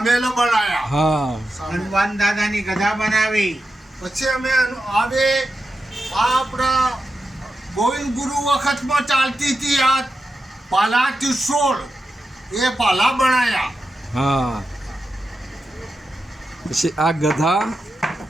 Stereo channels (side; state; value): both; normal; correlation 0.89